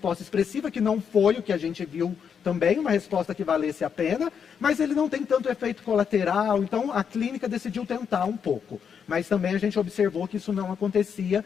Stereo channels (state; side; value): quieter; right; 7.2 dB